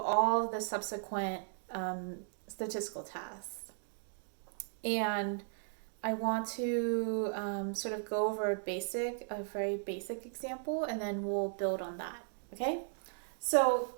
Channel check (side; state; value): left; silent; digital silence